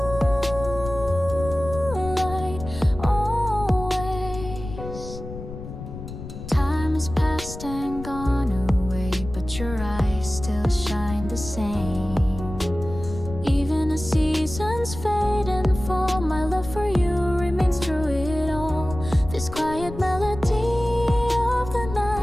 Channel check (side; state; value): left; noise; rumble, 11 dB below the sound